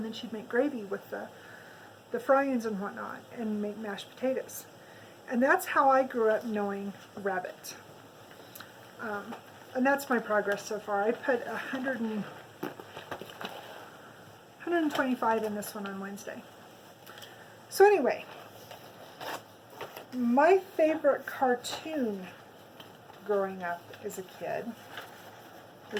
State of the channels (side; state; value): both; identical; correlation 1.00